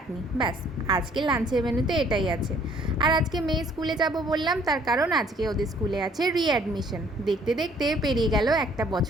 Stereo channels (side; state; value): both; normal; correlation 0.60